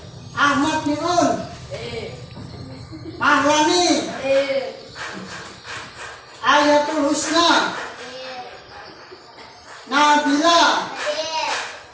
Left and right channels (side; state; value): both; identical; correlation 1.00